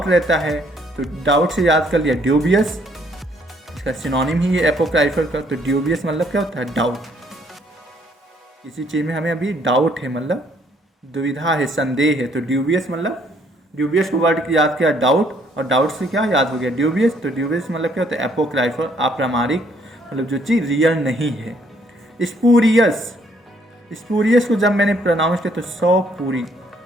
रहता है। तो डाउट से याद कर लिया ड्यूबियस, इसका सिनोनिम ही है एपोक्राइफल का। तो ड्यूबियस मतलब क्या होता है? डाउट। किसी चीज़ में हमें अभी डाउट है, मतलब दुविधा है, संदेह है, तो ड्यूबियस मतलब, ड्यूबियस को वर्ड याद किया डाउट, और डाउट से क्या याद हो गया? ड्यूबियस। तो ड्यूबियस मतलब क्या होता है? एपोक्राइफल, अप्रामाणिक, मतलब जो चीज़ रियल नहीं है। स्पूरियस, स्पूरियस को जब मैंने प्रोनाउंस किया तो 100 पूरी,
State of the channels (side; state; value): both; normal; correlation 0.66